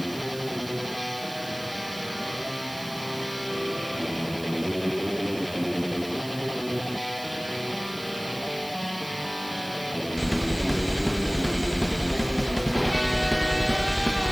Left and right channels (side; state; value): right; noise; hiss, 16 dB below the sound